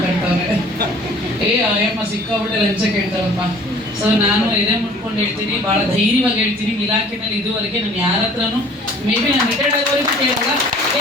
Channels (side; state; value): both; normal; correlation 0.51